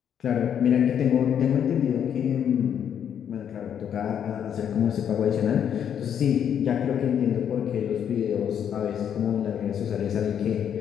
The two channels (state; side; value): quieter; right; 8.8 dB